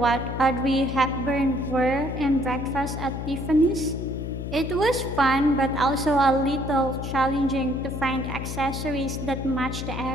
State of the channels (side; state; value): left; noise; hum, 5 dB below the sound